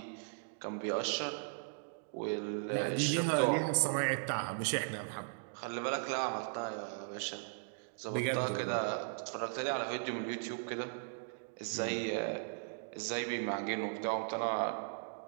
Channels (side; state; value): left; silent; digital silence